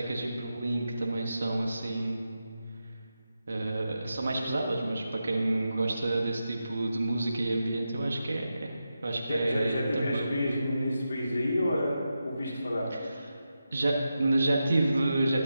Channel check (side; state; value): both; inverted; correlation -0.89